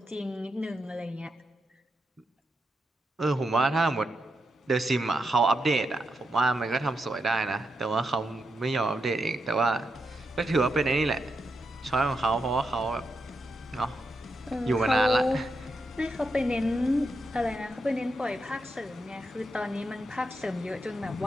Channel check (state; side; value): normal; both; correlation 0.84